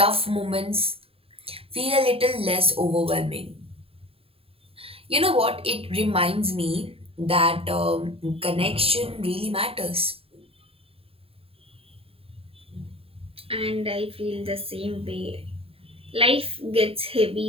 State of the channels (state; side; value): late; left; 0.27 ms